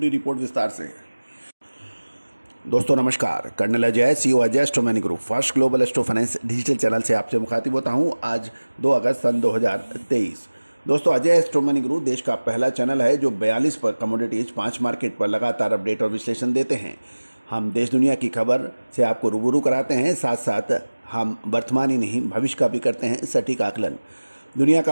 रिपोर्ट विस्तार से। दोस्तों नमस्कार। Colonel Ajay, CEO Ajay astro money group first global astro finance digital channel से आपसे मुखातिब होता हूं। आज 2 अगस्त सन 2023। दोस्तों, अजय एस्ट्रो मनी ग्रुप देश का पहला चैनल है जो 42 पर कमोडिटीज 5 मार्केट पर लगातार अपडेट और विश्लेषण देते हैं। हम देश दुनिया की खबर से आपको रूबरू कराते हैं, साथ साथ हम वर्तमान ही नहीं भविष्य का भी करते हैं सटीक आकलन। दुनिया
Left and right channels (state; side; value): inverted; both; correlation -1.00